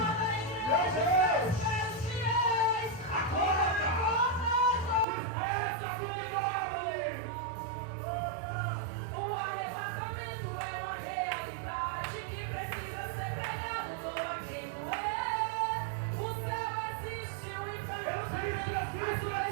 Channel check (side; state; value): left; drops out; at 5.1 s